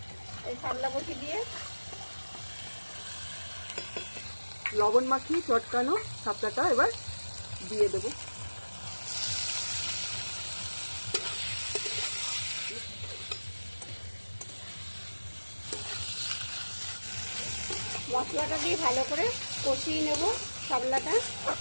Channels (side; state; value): both; inverted; correlation -1.00